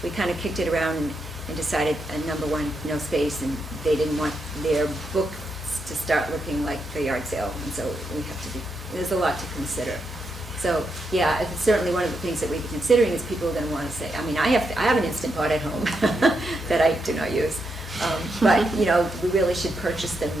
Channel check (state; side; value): normal; both; correlation 0.82